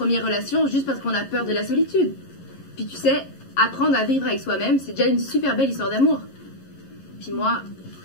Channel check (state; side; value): late; right; 11 ms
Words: relation juste parce qu'on a peur de la solitude. Puis tu sais, apprendre à vivre avec soi-même, c'est déjà une super belle histoire d'amour. Puis moi,